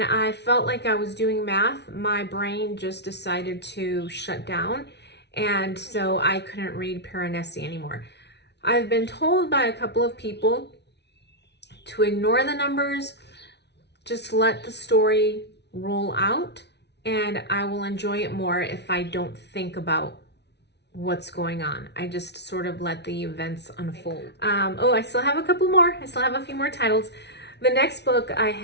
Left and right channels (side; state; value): right; late; 0.50 ms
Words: felt like I was doing math, my brain just decided to shut down. And so I couldn't read Piranesi anymore. I've been told by a couple of people to ignore the numbers, just let the story roll out, and I will enjoy it more if I don't think about what's going on. I just sort of let the events unfold. I still have a couple more. I still have a few more titles. The next book I